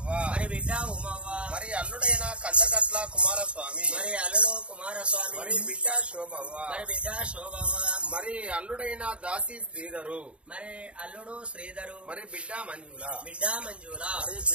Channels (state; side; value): late; left; 0.060 ms